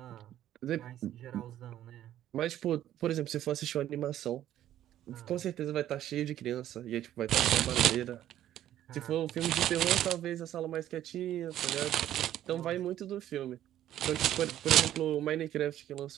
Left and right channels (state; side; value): quieter; left; 12.2 dB